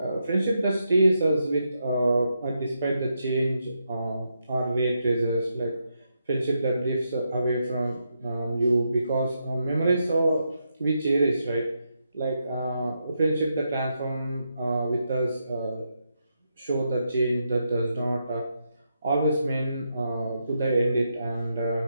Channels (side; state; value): both; inverted; correlation -0.82